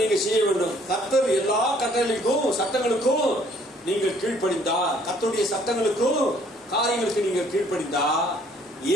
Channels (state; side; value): normal; both; correlation 0.61